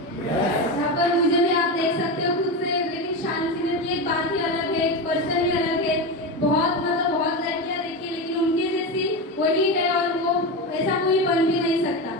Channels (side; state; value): both; normal; correlation 0.18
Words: यहाँ पर मुझे भी आप देख सकते हो खुद से, लेकिन शालीन सीनियर की एक बात ही अलग है, एक पर्सन ही अलग है। बहुत मतलब बहुत लड़कियां देखी लेकिन उनके जैसी वही है और वो ऐसा कोई बन भी नहीं सकता।